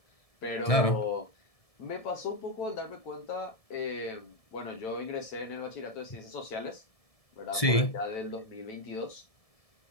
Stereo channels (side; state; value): right; late; 1.7 ms